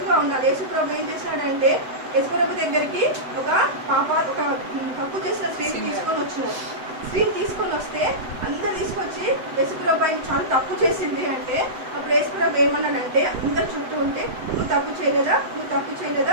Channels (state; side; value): late; left; 7.9 ms